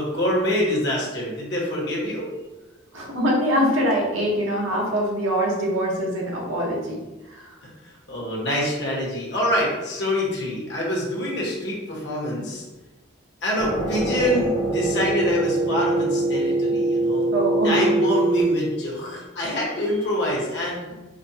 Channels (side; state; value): both; normal; correlation 0.39